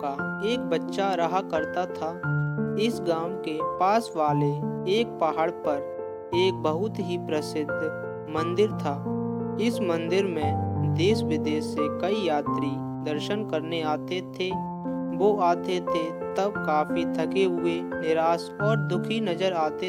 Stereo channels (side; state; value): both; identical; correlation 1.00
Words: एक बच्चा रहा करता था। इस गांव के पास वाले एक पहाड़ पर एक बहुत ही प्रसिद्ध मंदिर था। इस मंदिर में देश विदेश से कई यात्री दर्शन करने आते थे। वो आते थे तब काफी थके हुए, निराश और दुखी नजर